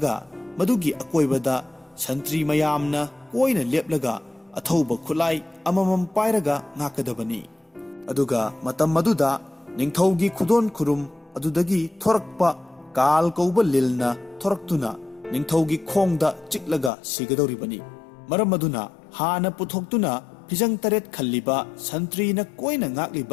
मदुगी अकोइबदा संत्री मयामना कोइना लेपलगा अथौबा खुलाई अममम पाइरगा ngakadabani। अदुगा मतम मदुदा निंगथौगी खुदोन खुरुम अदुदगी थोरकपा काल कौबा लिलना थोरक्तुना निंगथौगी खोंगदा चिकलगा सिगदौरिबनी। मरम मदुना हाना पुथोक्तुना फिजंग तरेट खल्लिबा संत्रीना कोइना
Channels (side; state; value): right; drops out; at 16.9 s